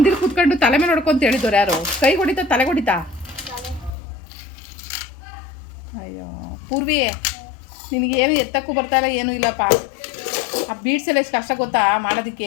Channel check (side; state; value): right; drops out; at 3.9 s